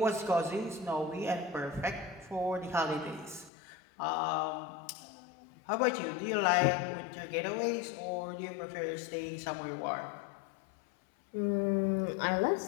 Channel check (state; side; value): drops out; right; at 3.5 s